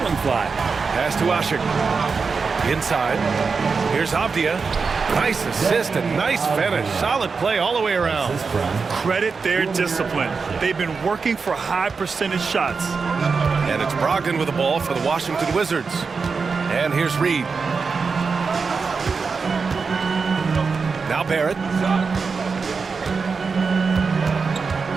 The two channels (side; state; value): left; quieter; 5.0 dB